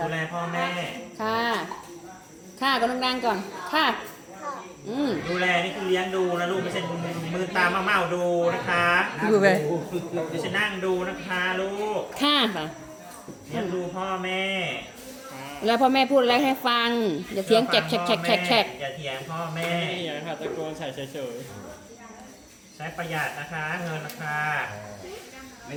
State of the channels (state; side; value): identical; both; correlation 1.00